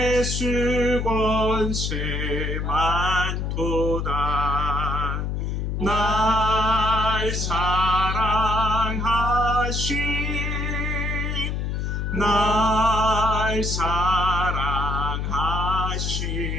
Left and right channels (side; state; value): left; noise; hum, 1 dB below the sound